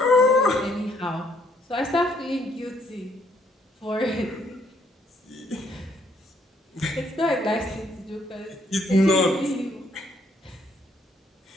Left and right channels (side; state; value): both; normal; correlation 0.69